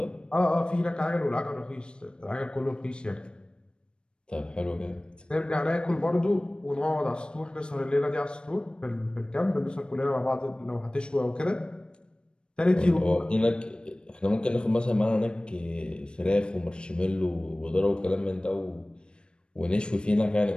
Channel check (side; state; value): right; late; 0.054 ms